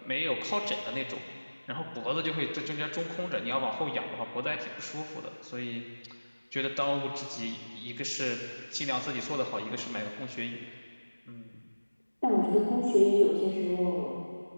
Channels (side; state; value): both; inverted; correlation -1.00